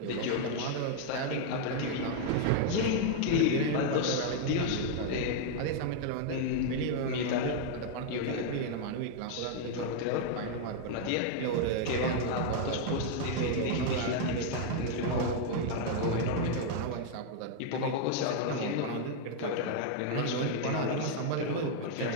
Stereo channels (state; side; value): different; both; correlation 0.00